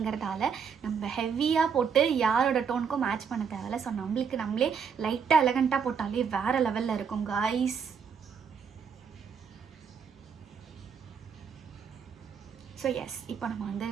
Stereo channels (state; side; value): quieter; left; 6.6 dB